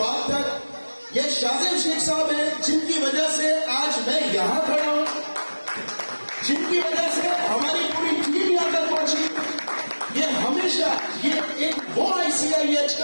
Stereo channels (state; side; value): inverted; both; correlation -1.00